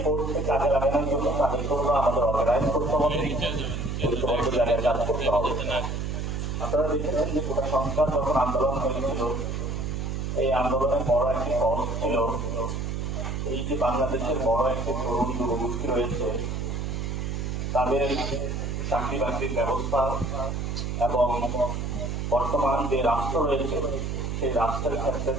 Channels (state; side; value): noise; right; hum, 2 dB below the sound